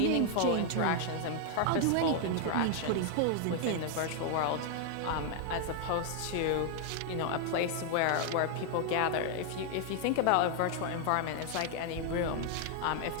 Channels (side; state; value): both; different; correlation 0.00